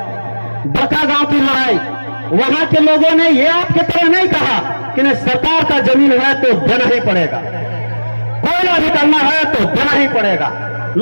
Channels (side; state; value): both; inverted; correlation -1.00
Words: बड़का गांव की लड़ाई, वहां के लोगों ने ये आपके तरह नहीं कहा कि नहीं सरकार का जमीन है तो देना ही पड़ेगा, कोयला भी करना है तो देना ही पड़ेगा।